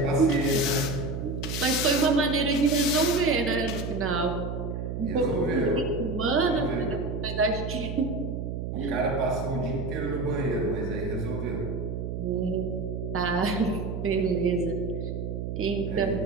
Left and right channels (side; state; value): right; noise; hum, 4 dB below the sound